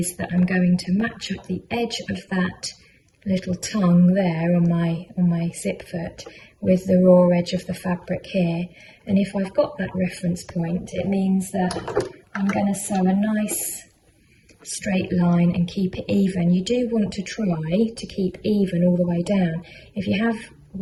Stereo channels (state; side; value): identical; both; correlation 1.00